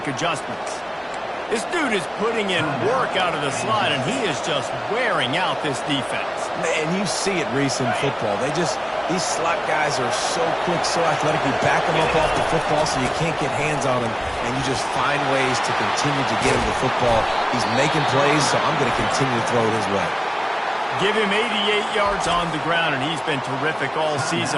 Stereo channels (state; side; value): identical; both; correlation 1.00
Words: adjustments. This dude is putting in work out of the slot, and he is just wearing out this defense. Man, you see it, Reese, in football. These slot guys are so quick, so athletic. You back them up off the football so you can't get hands on him, and you just find ways to continue to get him the football. He's making plays, so I'm going to continue to throw it his way. Give him 88 yards on the ground, and he's been terrific all